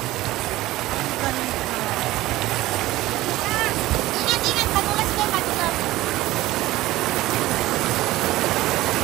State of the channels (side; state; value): left; quieter; 17.1 dB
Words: Ay, ingat, madulas kayo, madulas.